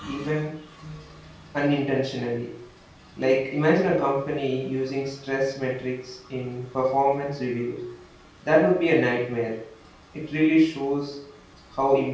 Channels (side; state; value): both; identical; correlation 1.00